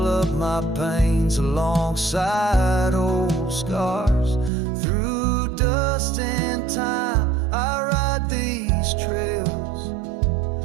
up my pains alongside old scars. Through dust and time, I ride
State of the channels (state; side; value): drops out; left; at 4.5 s